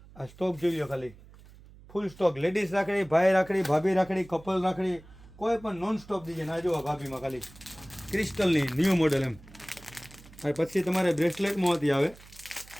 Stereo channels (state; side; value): noise; right; hum, 22 dB below the sound